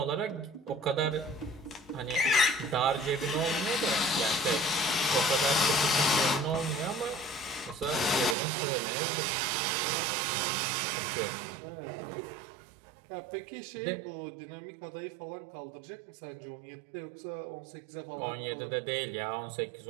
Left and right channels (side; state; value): left; drops out; at 8.3 s